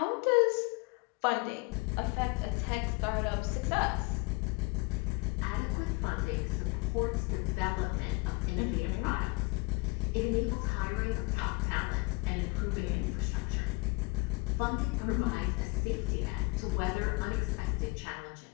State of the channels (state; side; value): quieter; right; 26.9 dB